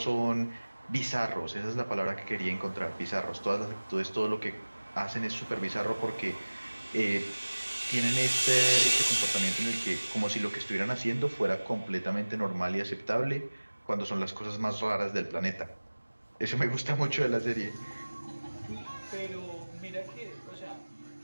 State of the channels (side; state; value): both; inverted; correlation -1.00